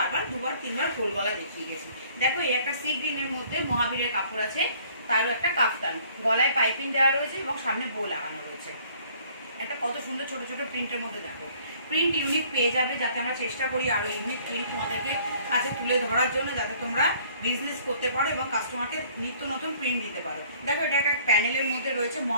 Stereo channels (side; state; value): both; inverted; correlation -0.57